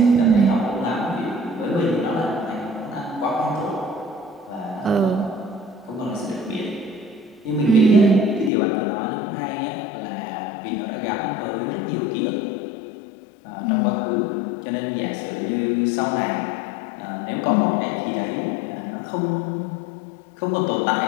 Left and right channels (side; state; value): right; drops out; at 8.5 s